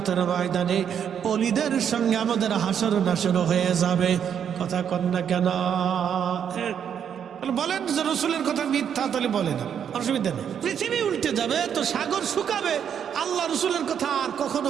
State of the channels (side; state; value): left; quieter; 8.3 dB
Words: ময়দানে ওলিদের সঙ্গে আমাদের হাসর নাসর হয়ে যাবে। কথা কন না কেন? বলেন যে রসুলের কথা মিথ্যা, তাহলে বলে না, অসুবিধা নেই। পৃথিবী উল্টে যাবে তো সাগর শুকাবে, আল্লাহ রসুলের কথা আর কখনো